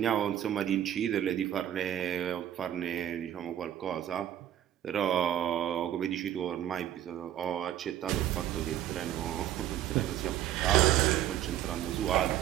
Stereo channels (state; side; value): quieter; left; 11.5 dB